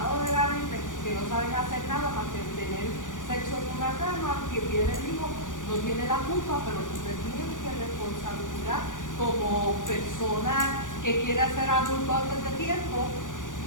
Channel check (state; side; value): late; right; 0.87 ms